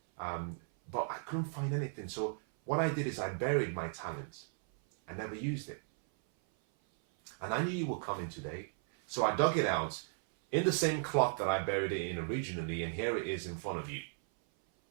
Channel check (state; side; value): silent; left; 54 dB below the other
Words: But I couldn't find anything. So what I did is I buried my talent. I never used it. And I knew you were coming today. So I dug it out in the same cloth that I buried it in originally, and here it is in front of you.